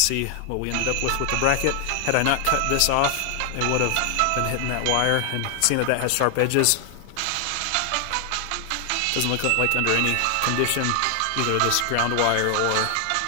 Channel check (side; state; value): both; different; correlation 0.00